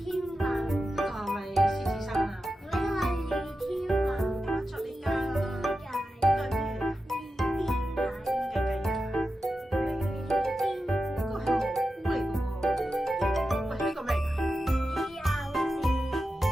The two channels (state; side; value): normal; both; correlation 0.91